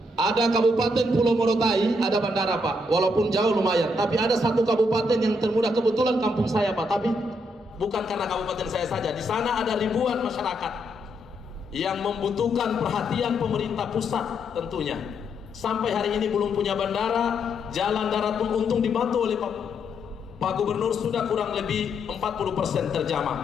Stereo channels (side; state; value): both; normal; correlation 0.77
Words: Ada Kabupaten Pulau Morotai, ada bandara Pak, walaupun jauh lumayan. Tapi ada satu kabupaten yang termuda, kebetulan kampung saya Pak. Tapi bukan karena kabupaten saya saja. Di sana ada ribuan masyarakat yang membutuhkan perhatian pemerintah pusat tentunya. Sampai hari ini belum punya bandara, jalan darat pun untung dibantu oleh Pak Gubernur sudah kurang lebih 40%